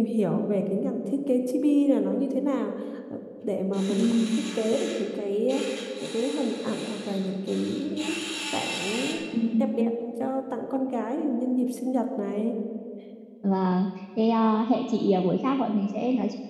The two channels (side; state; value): both; identical; correlation 1.00